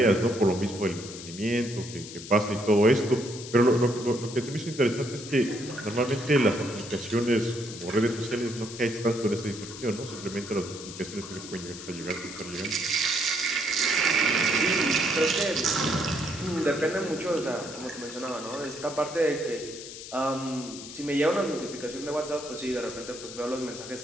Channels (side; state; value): left; noise; hiss, 12 dB below the sound